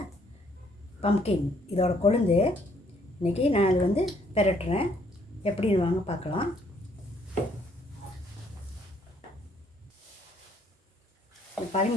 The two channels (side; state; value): both; normal; correlation 0.66